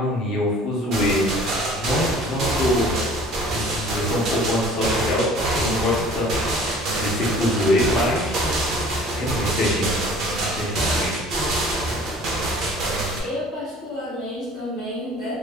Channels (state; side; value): normal; both; correlation 0.49